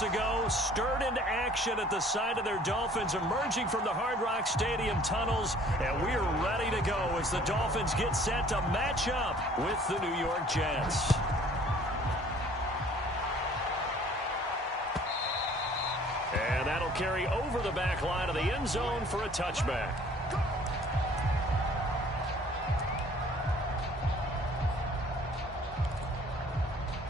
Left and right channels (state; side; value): normal; both; correlation 0.54